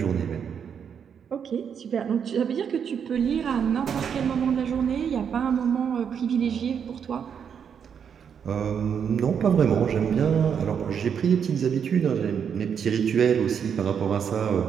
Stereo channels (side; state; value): left; quieter; 7.5 dB